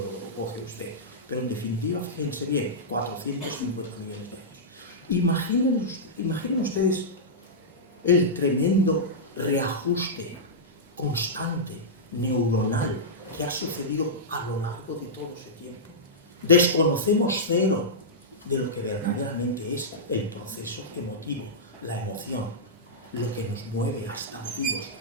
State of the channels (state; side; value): normal; both; correlation -0.13